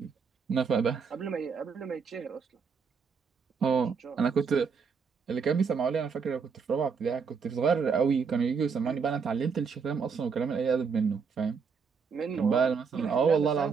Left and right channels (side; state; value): left; quieter; 5.7 dB